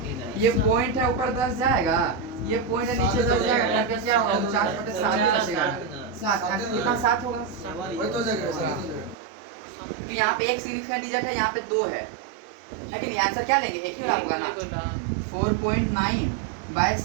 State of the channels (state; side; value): drops out; left; at 9.2 s